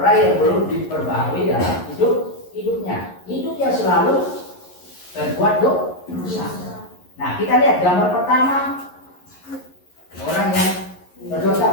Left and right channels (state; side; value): late; right; 11 ms